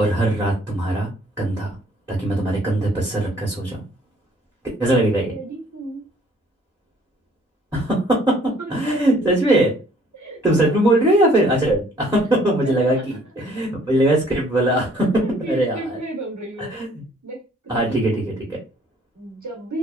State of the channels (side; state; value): both; normal; correlation 0.59